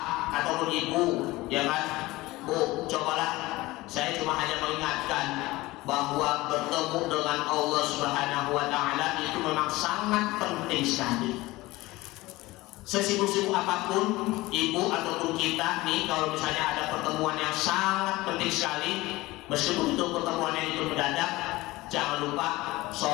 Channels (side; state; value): right; quieter; 19.7 dB